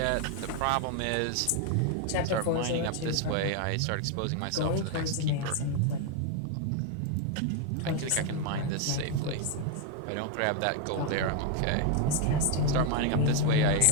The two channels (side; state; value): both; different; correlation 0.01